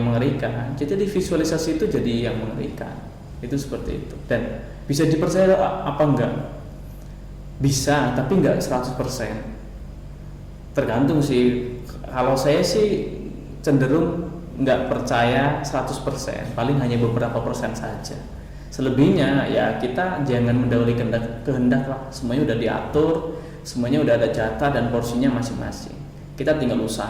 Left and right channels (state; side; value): identical; both; correlation 1.00